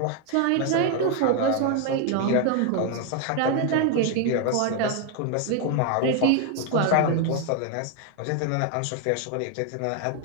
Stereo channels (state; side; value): different; both; correlation 0.01